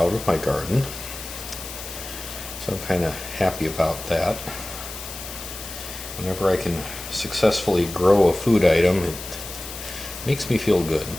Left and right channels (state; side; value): noise; left; hiss, 10 dB below the sound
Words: of my garden, So I'm kind of happy about that. Whenever I can successfully grow a food item, it makes me feel good